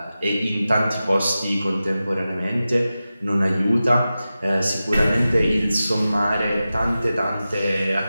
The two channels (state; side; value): inverted; both; correlation -0.94